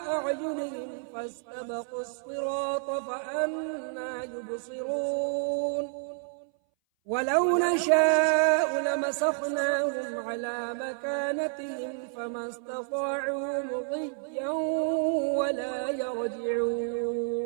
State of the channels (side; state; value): left; silent; 58 dB below the other